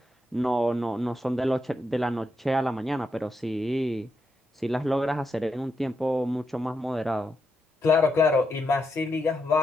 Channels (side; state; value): both; normal; correlation 0.83